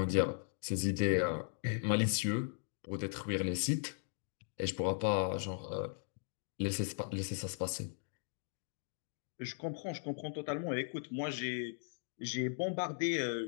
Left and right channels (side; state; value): right; silent; digital silence